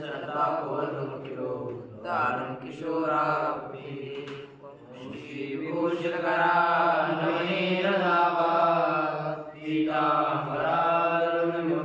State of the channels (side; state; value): both; identical; correlation 1.00